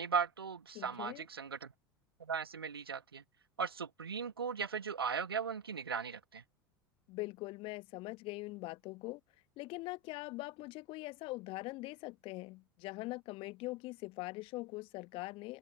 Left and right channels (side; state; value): both; normal; correlation 0.13